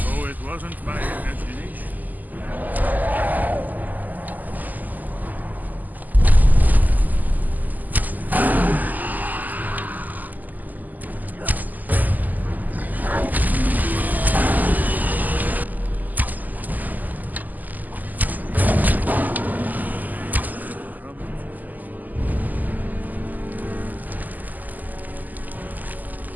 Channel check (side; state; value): left; late; 0.083 ms